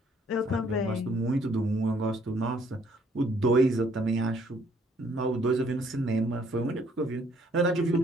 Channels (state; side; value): normal; both; correlation 0.64